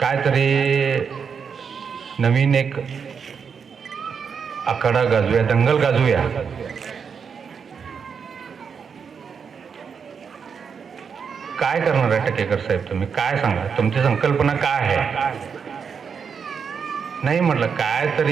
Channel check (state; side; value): quieter; left; 6.4 dB